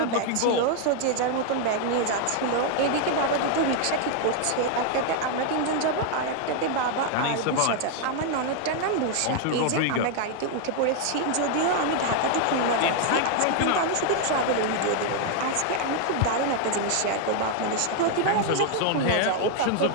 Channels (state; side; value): different; both; correlation 0.00